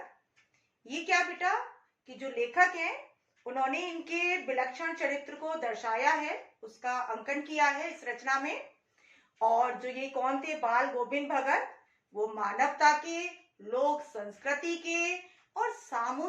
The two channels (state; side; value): identical; both; correlation 1.00